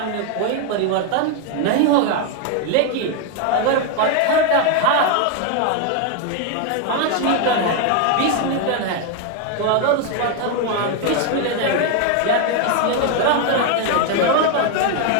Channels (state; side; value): different; both; correlation 0.01